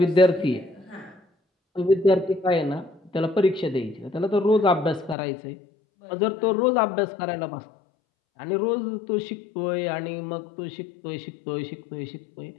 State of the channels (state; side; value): drops out; right; at 5.2 s